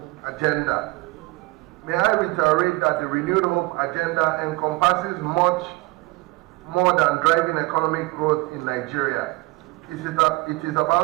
Agenda. May I reiterate that the Renewed Hope Agenda encompasses much more than driving economic growth in Nigeria. It is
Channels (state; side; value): quieter; left; 23.0 dB